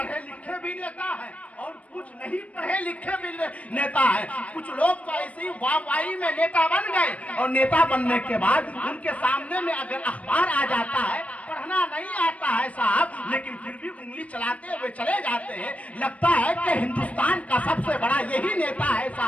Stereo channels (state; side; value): late; right; 0.066 ms